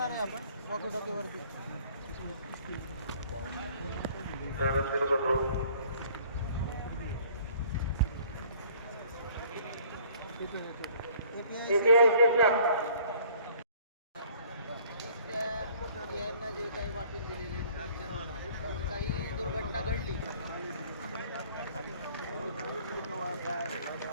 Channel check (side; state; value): both; inverted; correlation -0.55